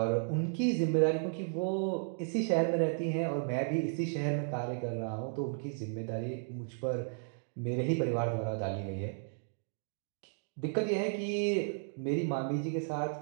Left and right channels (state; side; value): silent; left; digital silence